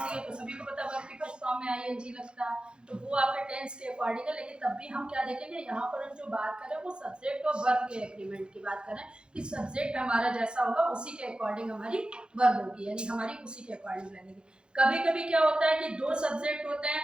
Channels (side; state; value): left; late; 0.052 ms